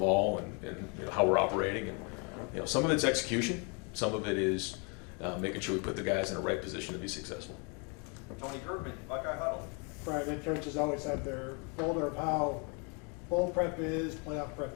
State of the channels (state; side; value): quieter; right; 34.7 dB